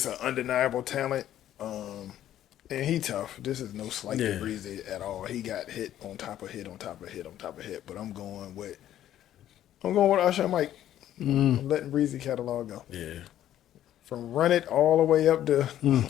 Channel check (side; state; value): right; quieter; 12.0 dB